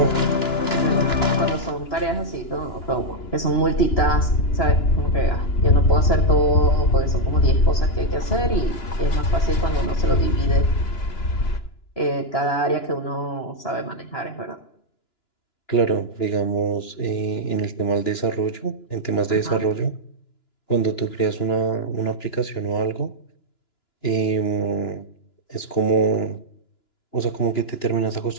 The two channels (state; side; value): late; right; 2.9 ms